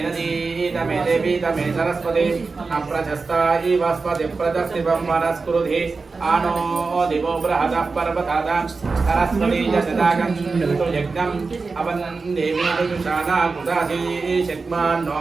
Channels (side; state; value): left; quieter; 4.2 dB